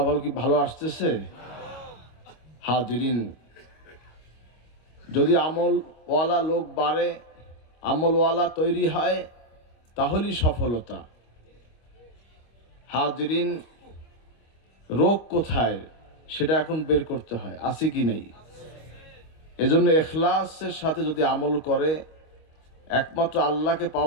কি ভালো আসতেছে? হাজিরিন, যদি আমলওয়ালা লোক বাড়ে, আমলওয়ালা তৈরি হয়, তাহলেই সফলতা। হাজিরিন, রোগ কোথায় সেটা এখন বের করতে হয়, আছে কি নেই। এজন্য ইখলাসের সাথে যদি আমল করে, একমাত্র আল্লাহকে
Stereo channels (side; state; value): right; late; 26 ms